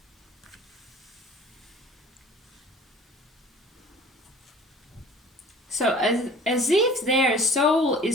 So as if their soul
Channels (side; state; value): both; normal; correlation 0.47